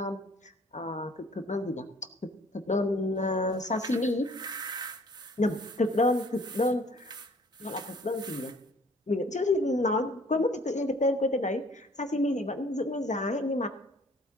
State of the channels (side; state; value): both; normal; correlation 0.55